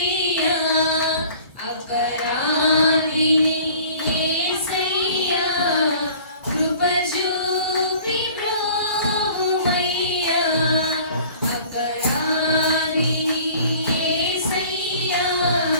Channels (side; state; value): both; inverted; correlation -0.49